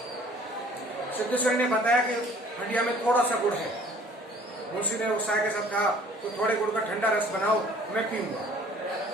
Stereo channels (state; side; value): normal; both; correlation 0.53